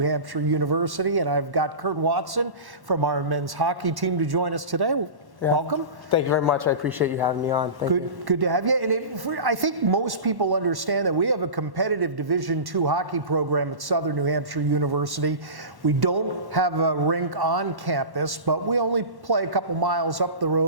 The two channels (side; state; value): left; late; 1.1 ms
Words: University. And I've got Kurt Watson from our men's hockey team to join us today. Yeah. Welcome. Thank you very much. I appreciate you having me on. Good to have you. And I think most people understand that we have a competitive Division II hockey program at Southern New Hampshire University. We don't have a rink on campus, but we only play a couple miles up the